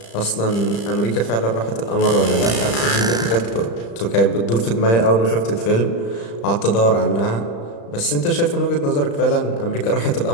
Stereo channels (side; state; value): right; late; 35 ms